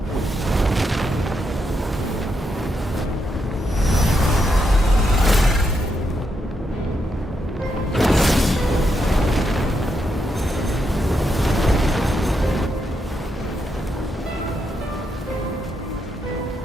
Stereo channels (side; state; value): both; normal; correlation 0.81